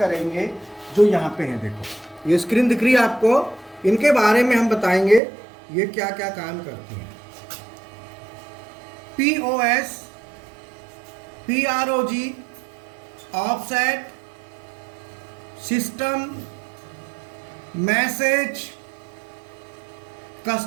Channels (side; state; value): left; drops out; at 5.2 s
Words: जो यहाँ पे हैं। देखो ये स्क्रीन दिख रही है आपको, इनके बारे में हम बताएंगे ये क्या क्या काम करती हैं। POS, PROG, offset, system, message,